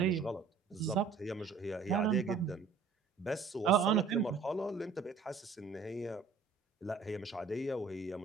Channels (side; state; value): left; quieter; 5.3 dB